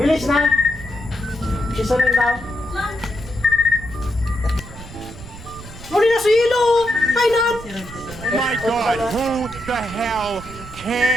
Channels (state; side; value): noise; right; rumble, 15 dB below the sound